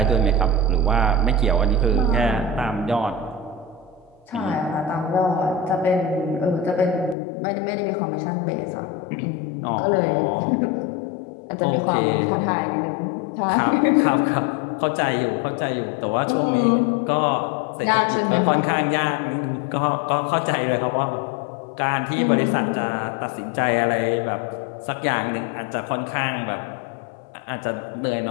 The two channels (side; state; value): right; drops out; at 7.2 s